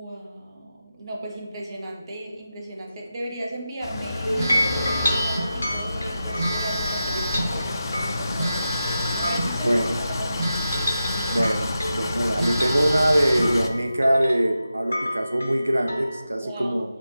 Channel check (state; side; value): inverted; both; correlation -0.91